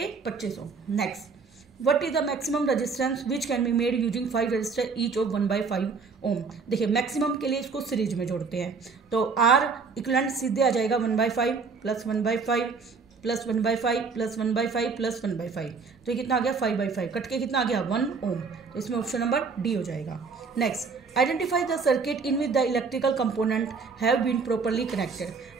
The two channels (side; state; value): left; quieter; 4.9 dB